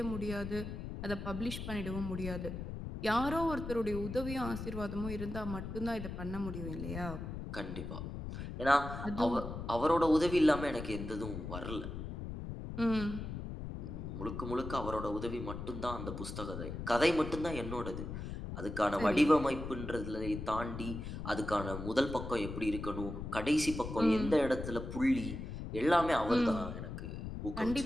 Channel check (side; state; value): left; noise; rumble, 7 dB below the sound